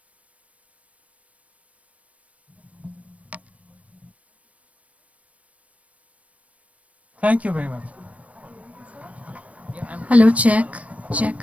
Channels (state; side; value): late; left; 0.066 ms